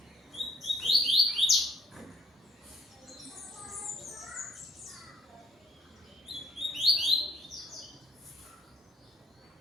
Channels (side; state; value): both; normal; correlation 0.66